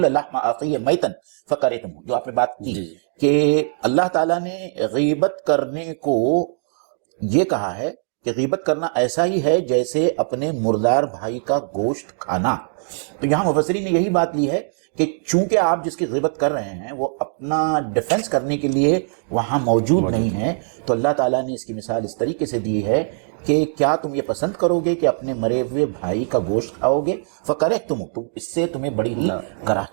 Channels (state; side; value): silent; left; digital silence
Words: لَحْمَ أَخِيهِ مَيْتًا فَكَرِهْتُمُوهُ. جو آپ نے بات کی کہ اللہ تعالیٰ نے غیبت کرنے کو یہ کہا ہے کہ غیبت کرنا ایسا ہی ہے جیسے اپنے مردار بھائی کا گوشت کھانا. تو یہاں مفسرین نے یہی بات لی ہے کہ چونکہ آپ جس کی غیبت کر رہے ہیں وہ اپنا ڈیفنس کرنے کے لیے وہاں موجود نہیں ہے، تو اللہ تعالیٰ نے اس کی مثال اس طریقے سے دی ہے کہ کیا تم یہ پسند کرو گے کہ اپنے مرے ہوئے بھائی کا گوشت کھاؤ گے؟ فَكَرِهْتُمُ، تو اس سے تمہیں بڑی